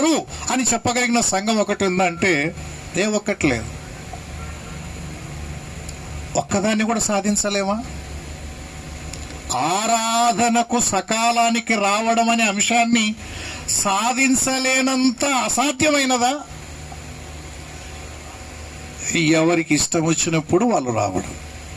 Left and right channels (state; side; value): identical; both; correlation 1.00